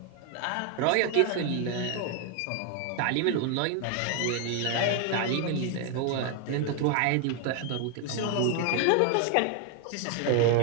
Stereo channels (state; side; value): different; both; correlation 0.01